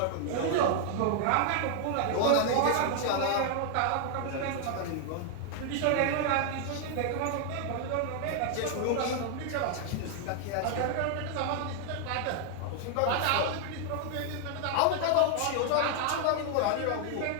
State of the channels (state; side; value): different; both; correlation 0.00